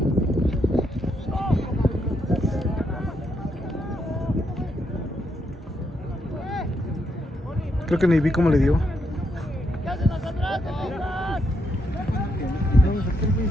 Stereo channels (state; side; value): normal; both; correlation 0.78